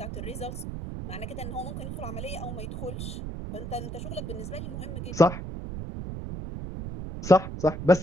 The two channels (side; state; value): right; noise; rumble, 6 dB below the sound